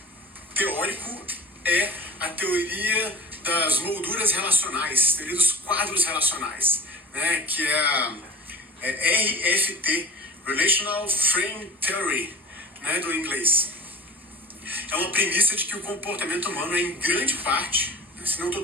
teórico, é a teoria das molduras relacionais, teoria dos quadros relacionais, né, que é a RFT, Relational Frame Theory, né, do inglês. É uma premissa de que o comportamento humano é, em grande parte, se não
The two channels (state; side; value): normal; both; correlation 0.37